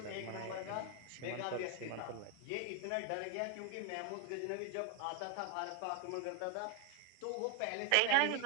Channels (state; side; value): different; both; correlation 0.00